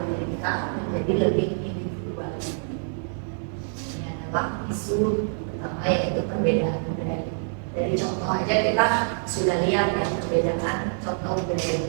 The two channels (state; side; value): silent; left; 55 dB below the other